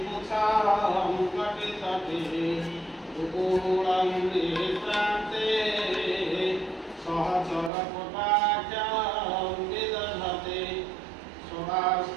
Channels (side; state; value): left; drops out; at 7.7 s